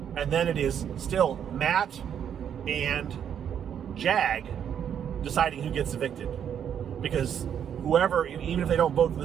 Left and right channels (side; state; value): left; quieter; 8.8 dB